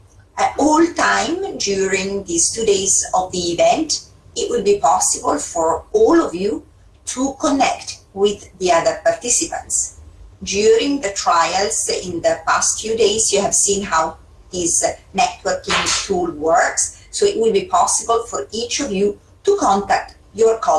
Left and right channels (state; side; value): identical; both; correlation 1.00